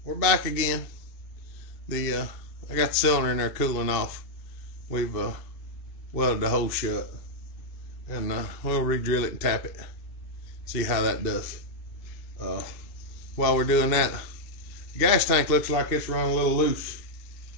we're back again. I got the cylinder in there cooling off. We've welded the hole shut, and we'll re-drill it and tap it, see how that does. While we're doing that, the gas tank looks like it's run a little loose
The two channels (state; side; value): late; right; 2.6 ms